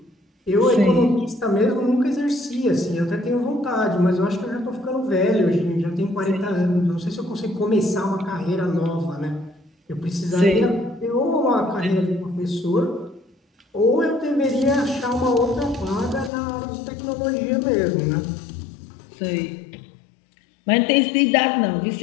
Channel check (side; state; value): right; drops out; at 16.3 s